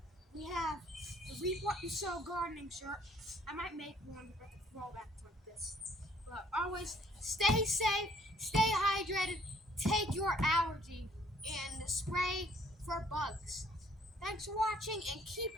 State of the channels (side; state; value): both; normal; correlation 0.62